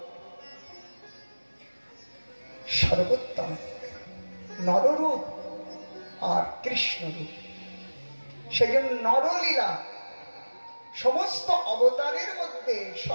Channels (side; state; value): both; inverted; correlation -1.00